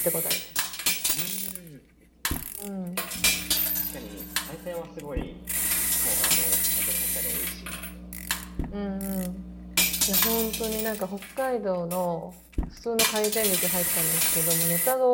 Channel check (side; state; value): both; identical; correlation 1.00